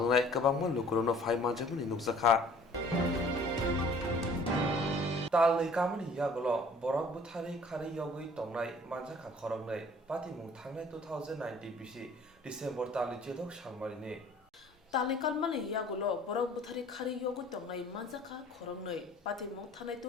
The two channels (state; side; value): normal; both; correlation 0.52